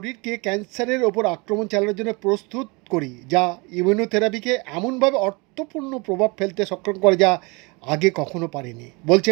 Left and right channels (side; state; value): left; quieter; 27.9 dB